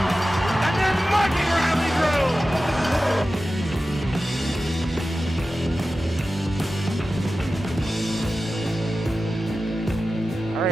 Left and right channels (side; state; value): both; normal; correlation 0.94